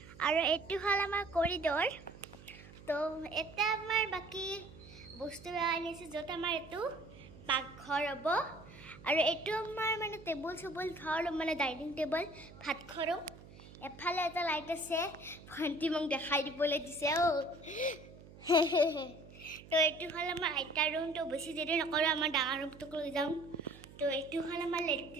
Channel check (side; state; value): right; noise; hum, 19 dB below the sound